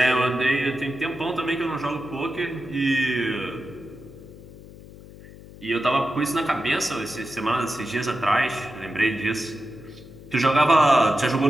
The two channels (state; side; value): noise; left; hum, 18 dB below the sound